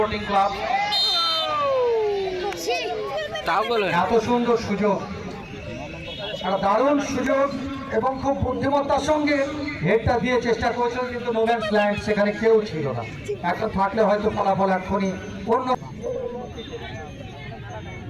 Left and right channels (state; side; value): identical; both; correlation 1.00